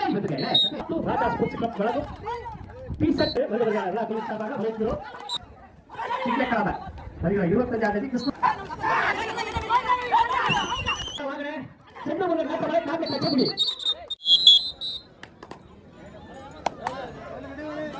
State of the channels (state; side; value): identical; both; correlation 1.00